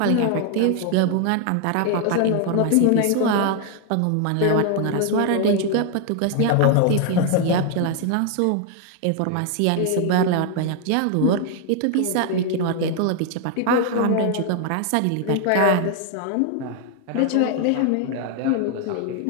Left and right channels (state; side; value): different; both; correlation 0.00